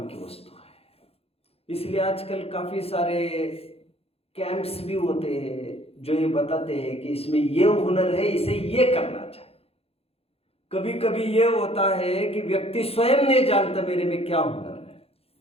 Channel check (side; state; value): right; late; 0.29 ms